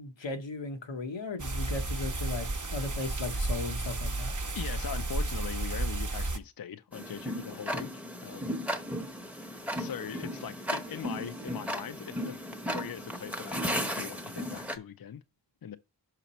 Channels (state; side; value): normal; both; correlation 0.49